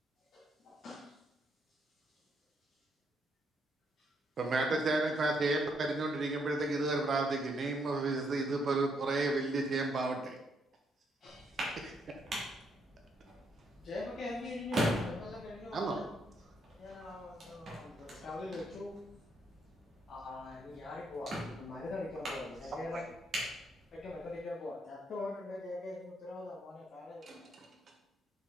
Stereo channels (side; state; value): both; normal; correlation 0.74